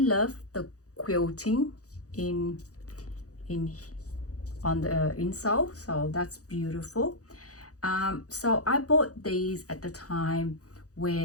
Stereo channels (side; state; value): right; late; 0.66 ms